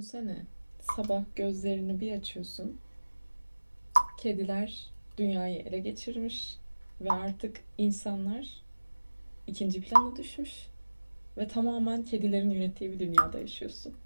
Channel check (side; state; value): both; inverted; correlation -1.00